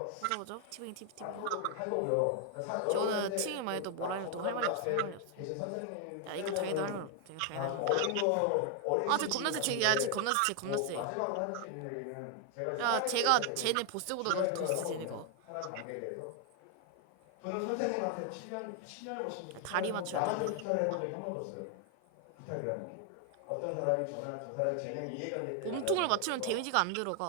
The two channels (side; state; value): both; different; correlation 0.00